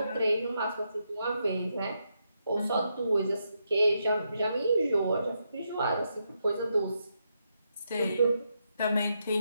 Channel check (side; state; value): both; inverted; correlation -0.82